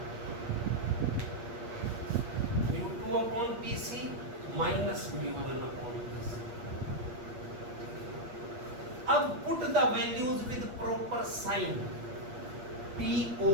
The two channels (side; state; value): left; late; 8.4 ms